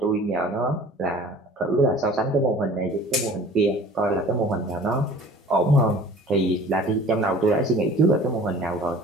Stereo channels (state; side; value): normal; both; correlation 0.46